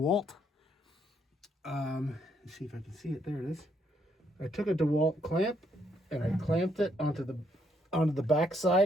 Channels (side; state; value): both; normal; correlation 0.73